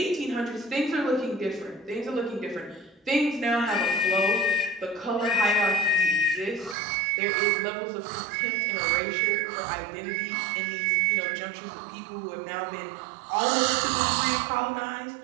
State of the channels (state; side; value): drops out; left; at 6.8 s